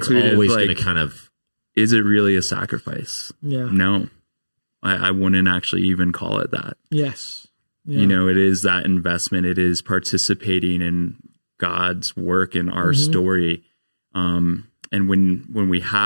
it's always going to kind of. Is it really a sacrifice? Yeah. No, I wouldn't actually even call it that. Yes. Yeah. It is that investment. It is participating in God's work in our story. And when we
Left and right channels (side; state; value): both; inverted; correlation -1.00